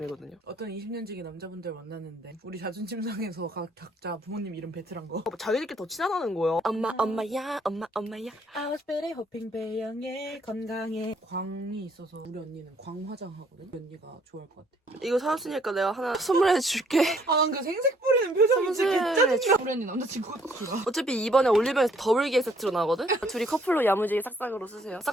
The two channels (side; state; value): both; normal; correlation 0.65